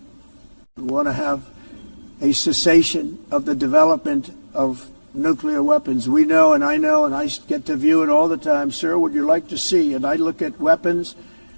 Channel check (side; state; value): both; inverted; correlation -1.00